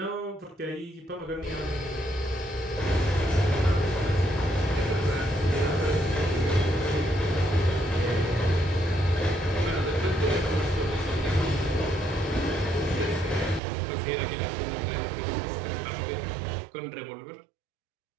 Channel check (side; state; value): left; drops out; at 13.6 s